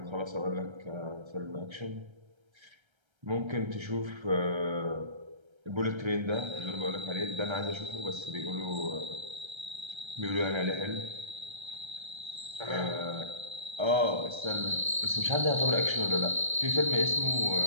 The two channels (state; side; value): late; left; 1.3 ms